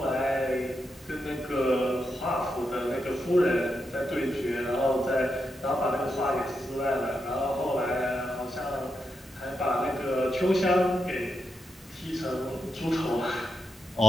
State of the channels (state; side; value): normal; both; correlation 0.85